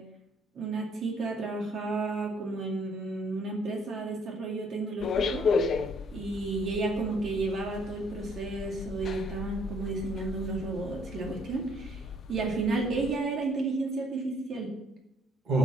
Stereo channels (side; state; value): both; normal; correlation 0.63